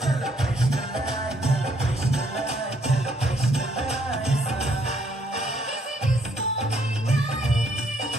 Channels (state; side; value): normal; both; correlation 0.68